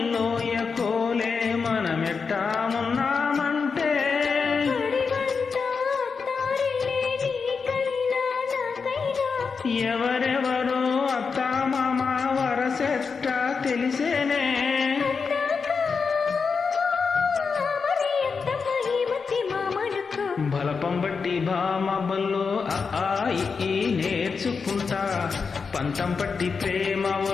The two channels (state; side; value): quieter; right; 5.3 dB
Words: కోలే మనమెట్టా ఉన్నామంటే ఎవరెవరో అత్తా మామ వరసెట్టా తెలిసేనే బలపం బట్టి భామ బల్లో ఈ నేర్చుకుంటా పంతం పట్టి ప్రేమ